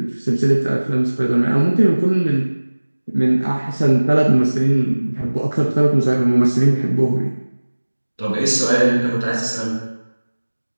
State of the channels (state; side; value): inverted; both; correlation -1.00